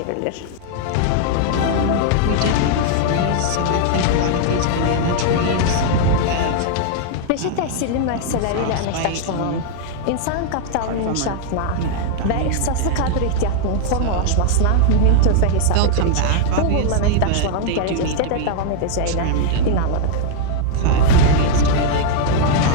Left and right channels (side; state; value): both; different; correlation -0.01